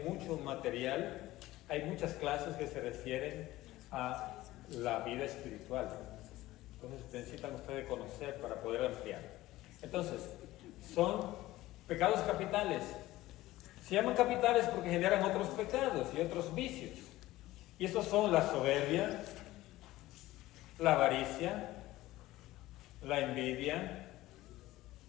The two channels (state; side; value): quieter; right; 16.9 dB